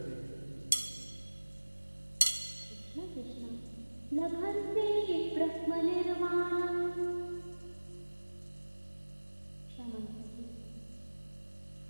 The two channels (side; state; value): both; inverted; correlation -1.00